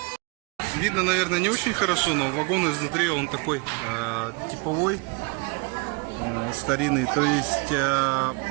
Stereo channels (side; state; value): left; quieter; 28.5 dB